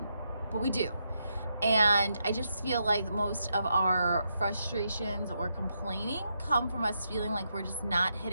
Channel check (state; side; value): inverted; both; correlation -0.81